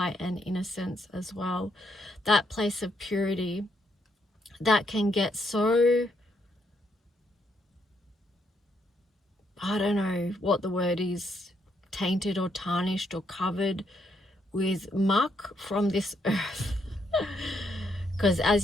and innocence as well. That place of purity that can get so, I don't know what the word is, tainted or tarnished or covered with muck from this earth. Because as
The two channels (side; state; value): both; normal; correlation 0.75